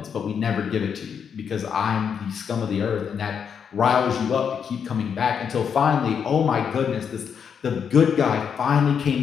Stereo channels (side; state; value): right; quieter; 7.2 dB